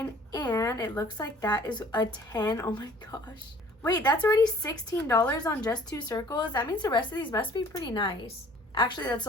and it looks like that is a 10. Oh my gosh. Wait, that's already $16 on just 2 circles? That means the rest of these must be pretty nice. Actually, that's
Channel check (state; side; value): normal; both; correlation 0.53